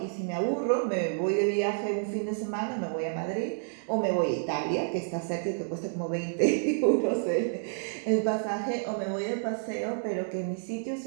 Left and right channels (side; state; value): left; silent; digital silence